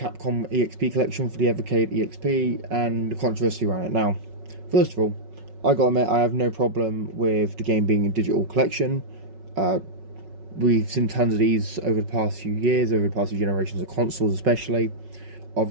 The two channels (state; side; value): late; left; 5.4 ms